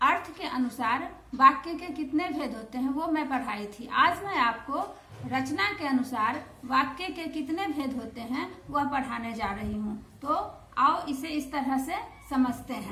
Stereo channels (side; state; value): both; identical; correlation 1.00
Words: अर्थ के अनुसार वाक्य के कितने भेद होते हैं वो मैं पढ़ाई थी. आज मैं आपको रचना के अनुसार वाक्य के कितने भेद होते हैं वह पढ़ाने जा रही हूँ. तो आओ इसे इस तरह से समझते